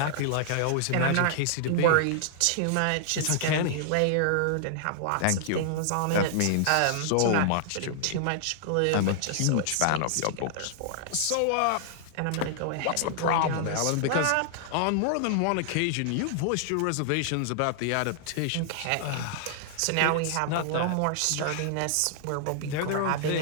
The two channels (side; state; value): both; different; correlation 0.00